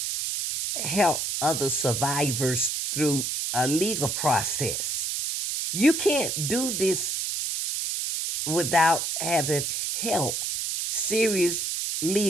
help other survivors through a legal process. You can't do this without having help, serious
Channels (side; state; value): right; noise; hiss, 1 dB below the sound